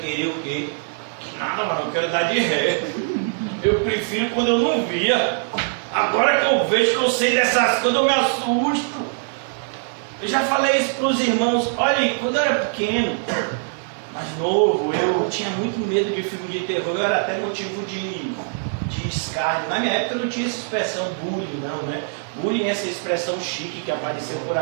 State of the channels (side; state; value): left; silent; digital silence